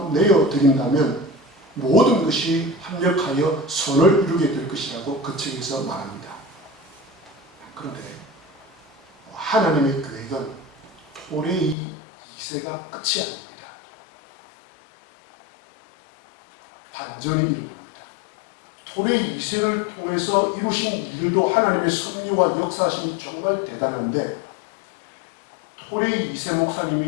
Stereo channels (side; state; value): right; drops out; at 11.8 s